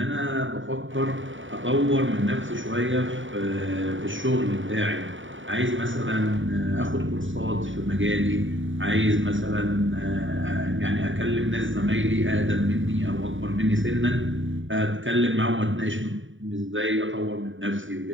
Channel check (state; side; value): late; left; 0.56 ms